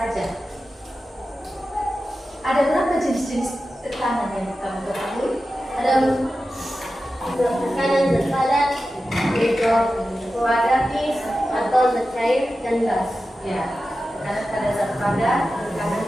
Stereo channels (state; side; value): normal; both; correlation 0.93